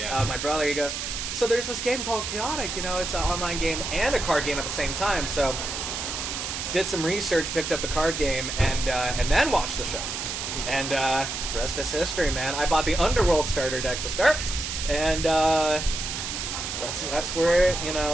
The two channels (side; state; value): right; noise; hiss, 4 dB below the sound